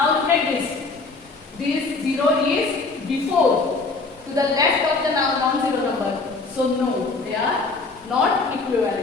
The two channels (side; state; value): right; quieter; 3.8 dB